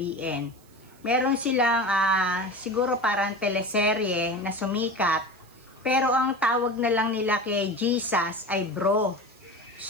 meron silang siguro parang teleserye na sumikat, pero ang tawag na lang nila kay Jesus ay bro.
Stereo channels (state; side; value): noise; right; hiss, 29 dB below the sound